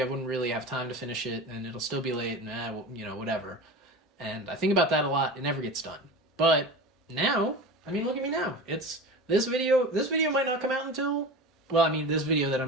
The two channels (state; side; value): normal; both; correlation 0.31